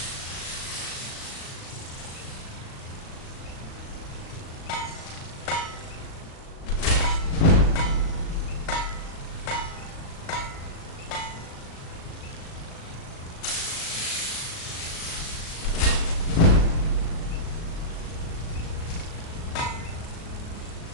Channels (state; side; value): late; right; 37 ms